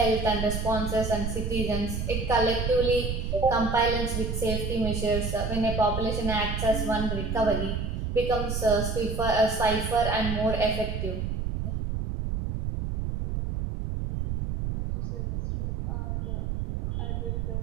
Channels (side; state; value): right; noise; rumble, 2 dB below the sound